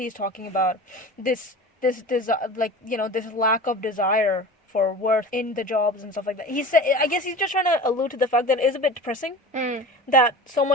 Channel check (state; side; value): normal; both; correlation 0.35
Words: talking about, this lack of desire for worth in the jobs and stuff like that. He said, I guess he's just trying to allude to the fact that it is a bit depressing that so